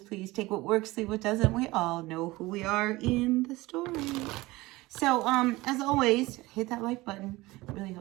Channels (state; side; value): quieter; left; 20.3 dB